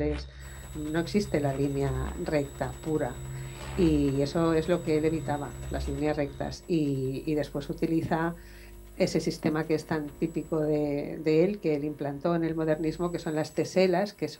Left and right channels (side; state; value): both; identical; correlation 1.00